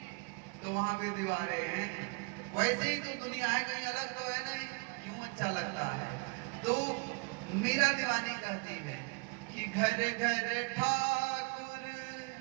तो वहां भी दीवारें हैं, वैसे ही तो दुनिया है, कहीं अलग तो है नहीं, क्यों अच्छा लगता है? तो मीरा दीवानी कहती है कि घर घर ठाकुर,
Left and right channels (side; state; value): left; quieter; 32.5 dB